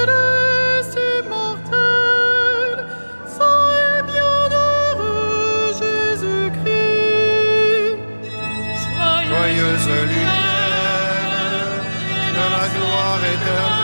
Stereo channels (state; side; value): inverted; both; correlation -1.00